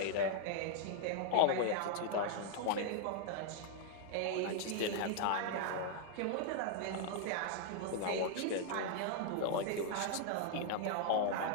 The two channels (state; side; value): different; both; correlation 0.00